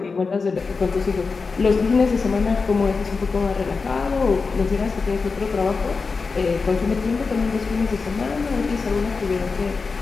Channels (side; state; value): right; quieter; 4.6 dB